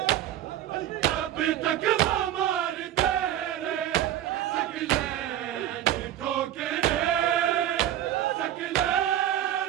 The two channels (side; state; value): left; quieter; 11.8 dB